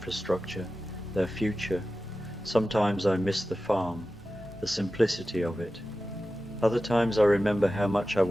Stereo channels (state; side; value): normal; both; correlation 0.94